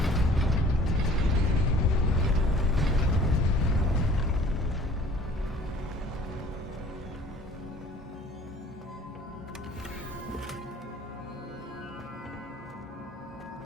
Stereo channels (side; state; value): both; normal; correlation 0.51